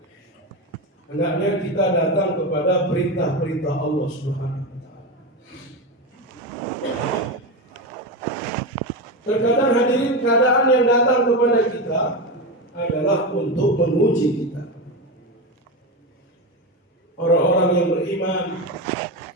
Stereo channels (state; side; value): normal; both; correlation 0.17